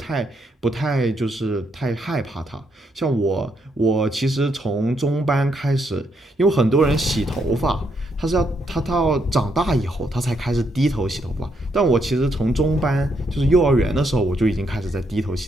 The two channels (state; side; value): normal; both; correlation 0.76